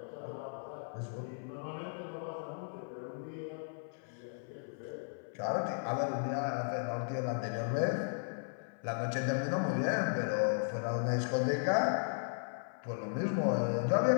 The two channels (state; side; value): silent; right; 54 dB below the other